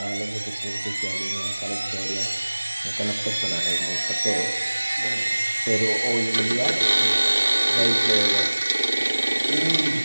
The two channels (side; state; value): both; inverted; correlation -1.00